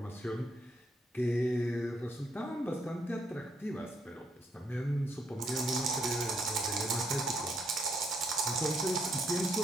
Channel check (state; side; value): normal; both; correlation 0.73